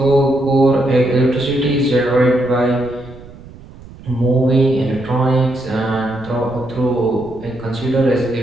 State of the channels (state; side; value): noise; right; rumble, 19 dB below the sound